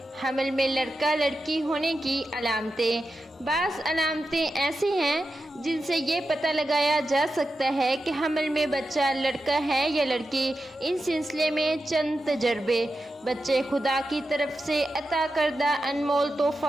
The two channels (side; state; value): both; normal; correlation 0.90